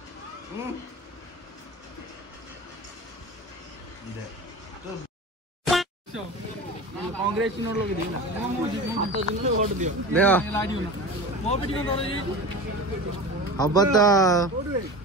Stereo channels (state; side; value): normal; both; correlation 0.32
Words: कांग्रेस नोट लोग दिना हाथ जिनले वोट दियो देखो लाडियो ना मो बेटी को नोट अब तो